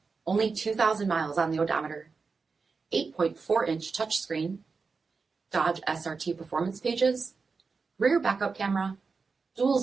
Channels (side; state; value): left; quieter; 4.7 dB